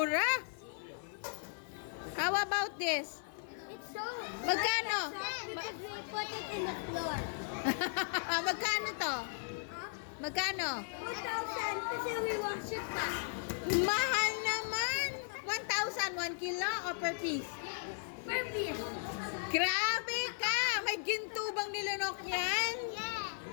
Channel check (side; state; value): right; silent; 53 dB below the other